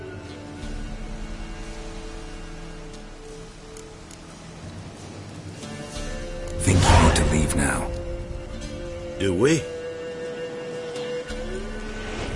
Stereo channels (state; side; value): identical; both; correlation 1.00